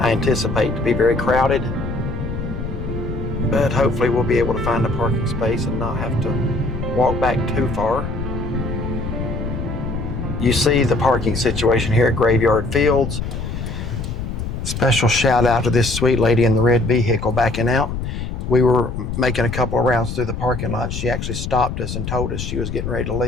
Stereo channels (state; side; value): noise; left; rumble, 5 dB below the sound